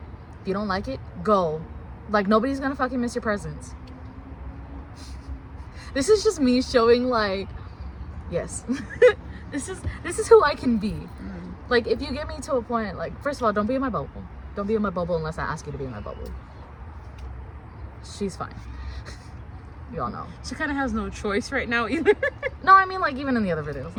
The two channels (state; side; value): identical; both; correlation 1.00